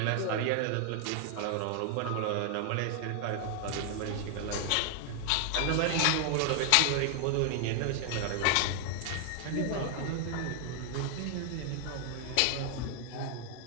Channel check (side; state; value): both; different; correlation 0.00